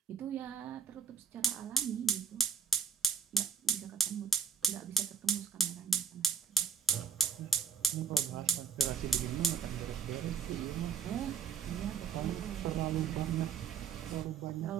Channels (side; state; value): left; quieter; 5.1 dB